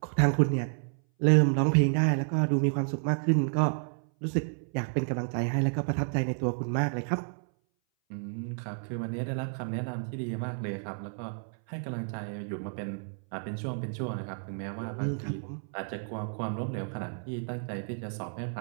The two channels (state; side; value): silent; left; 57 dB below the other